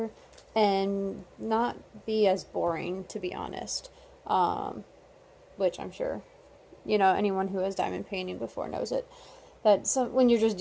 and not be as boring, to be honest. Which I'm sure, anyone who has diamond painting before knows it. That when you're just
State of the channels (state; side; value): identical; both; correlation 1.00